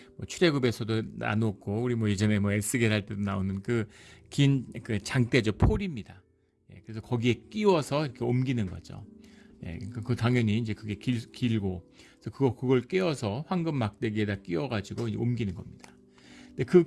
출애굽에서도 나눴고 우리 예전에 에스겔 할 때도 나오는 그 긴 그 장대죠. 폴입니다. 그래서 거기에 끼워서 이렇게 옮기는 거죠. 그 당연히 이제 그게 길고, 그래서 그걸 끼워서 황금 막대기에다 끼워가지고 옮기는 겁니다. 근데 그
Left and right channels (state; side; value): identical; both; correlation 1.00